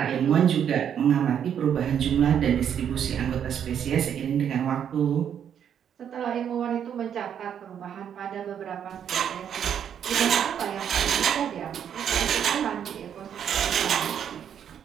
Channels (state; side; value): quieter; left; 8.7 dB